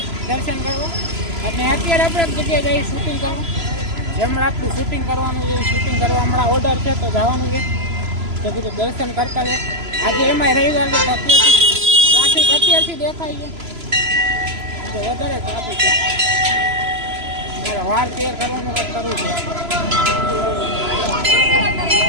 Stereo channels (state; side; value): late; left; 3.0 ms